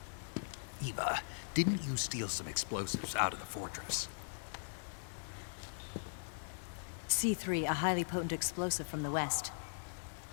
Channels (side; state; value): right; silent; digital silence